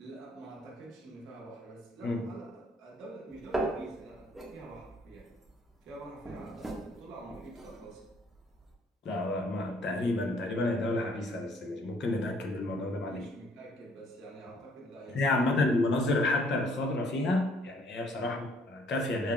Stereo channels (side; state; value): both; normal; correlation 0.63